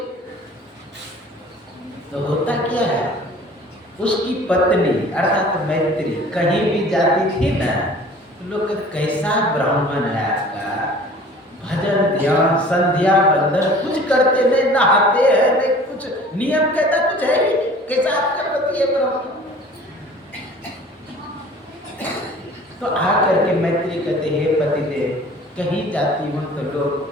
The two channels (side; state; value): both; normal; correlation 0.47